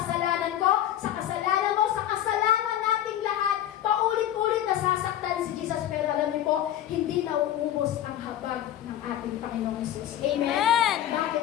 ko, sa kasalanan mo, sa kasalanan nating lahat, paulit-ulit nasasaktan si Jesus. Pero alam niyo po, hindi nauubos ang habag ng ating Panginoong Isus. Amen? Amen.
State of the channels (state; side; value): quieter; right; 11.9 dB